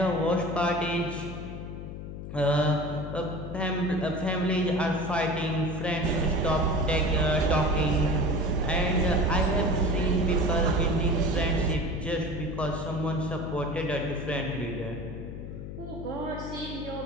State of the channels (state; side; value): noise; left; hum, 9 dB below the sound